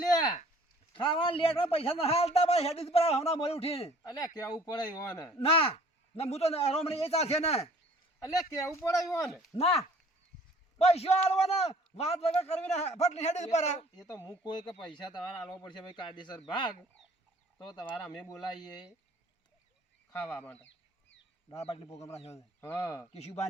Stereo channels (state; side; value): normal; both; correlation 0.53